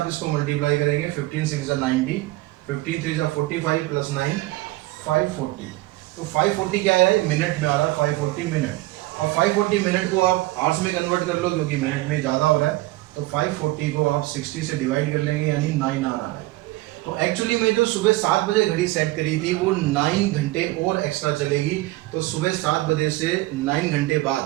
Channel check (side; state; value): left; quieter; 18.9 dB